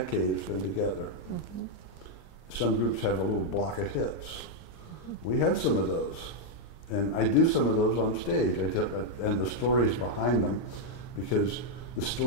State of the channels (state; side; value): late; right; 40 ms